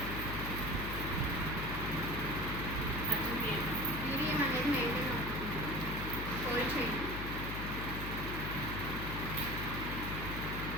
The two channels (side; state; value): left; noise; hum, 5 dB below the sound